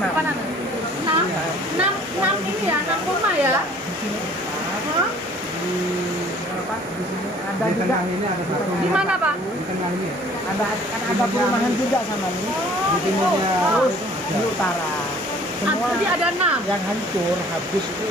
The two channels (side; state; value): both; normal; correlation 0.53